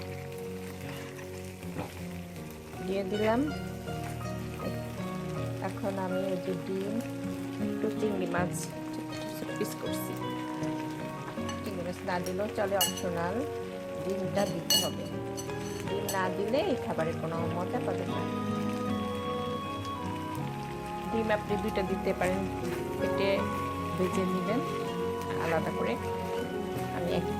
দিয়ে দিলাম। এখন আমি এই যে ডিম, একটু চিংড়ি মাছ পিস করছি, চিংড়ি মাছ না দিলেও চলে, অপশনাল, ডিমটা দিতে হবে, ডিম না দিলে এই খাবারের কোনো মজা পাবে না। ডিম আপনি 2টা দিতে পারেন, কেটে ভেজে নেবেন আলাদা করে, আমি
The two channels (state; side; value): identical; both; correlation 1.00